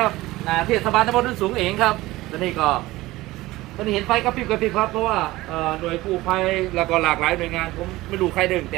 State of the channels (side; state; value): left; quieter; 18.4 dB